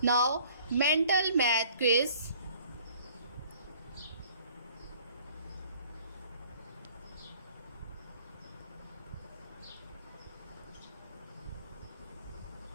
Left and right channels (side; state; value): both; inverted; correlation -0.54